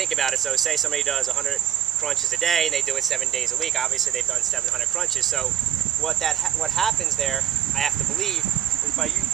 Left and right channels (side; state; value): left; quieter; 11.2 dB